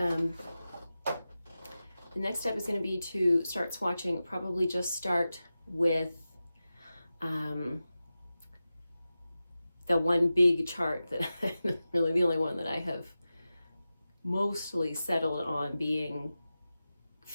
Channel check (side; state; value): both; inverted; correlation -0.94